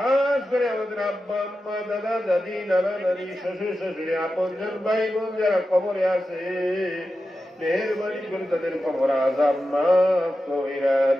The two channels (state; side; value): normal; both; correlation 0.91